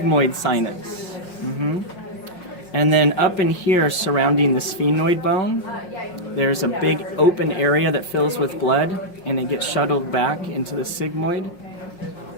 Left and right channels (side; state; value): right; late; 5.5 ms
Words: sinus. And then up in here, surrounding the sphenoid bone, there's a big open area that fills with blood, and it gets shuttled back into the sigmoid.